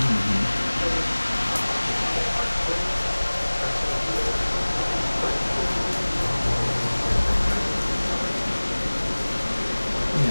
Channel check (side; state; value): both; inverted; correlation -1.00